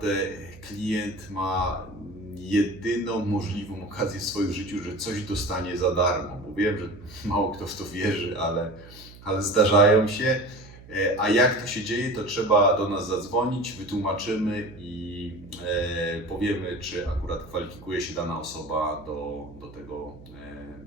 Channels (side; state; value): right; noise; hum, 19 dB below the sound